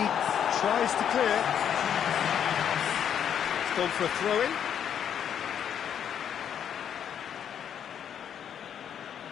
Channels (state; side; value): quieter; right; 8.8 dB